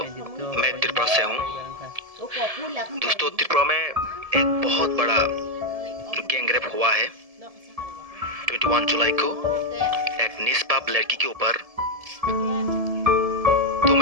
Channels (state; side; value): late; left; 1.7 ms